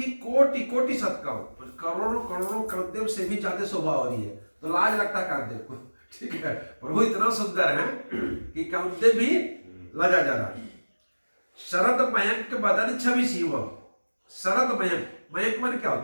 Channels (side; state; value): both; inverted; correlation -1.00